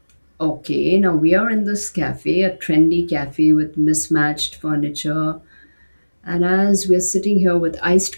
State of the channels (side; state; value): both; inverted; correlation -1.00